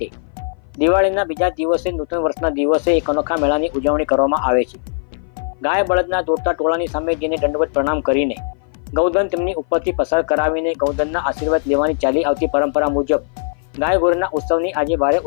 દિવાળીના બીજા દિવસે નૂતન વર્ષના દિવસે એક અનોખા મેળાની ઉજવણી કરવામાં આવે છે। ગાય બળદના દોડતા ટોળાની સામે જેને દંડવત પ્રણામ કરીને ગૌધન તેમની ઉપરથી પસાર કરાવીને ગૌધનના આશીર્વાદ લેવાની ચાલી આવતી પરંપરા મુજબ ગાય ગોરીના ઉત્સવની આજે ભારે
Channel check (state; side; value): silent; right; 57 dB below the other